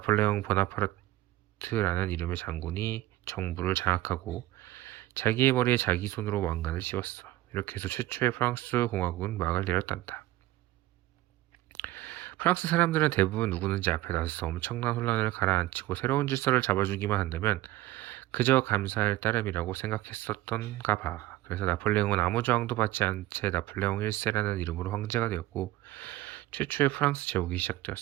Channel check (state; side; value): quieter; left; 16.2 dB